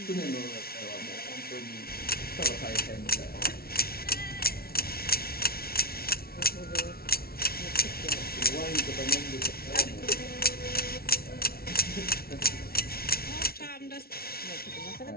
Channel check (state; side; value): late; right; 0.44 ms